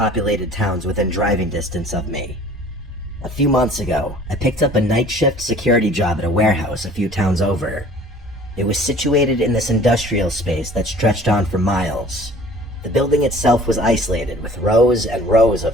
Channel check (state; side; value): normal; both; correlation 0.49